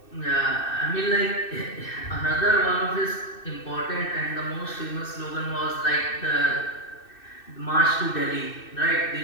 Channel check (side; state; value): right; late; 2.6 ms